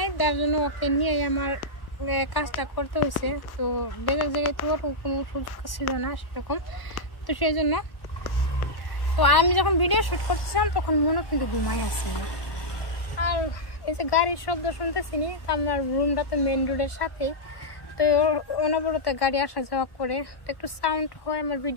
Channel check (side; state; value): right; late; 1.1 ms